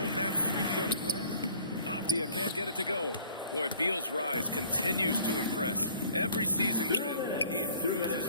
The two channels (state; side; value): inverted; both; correlation -0.53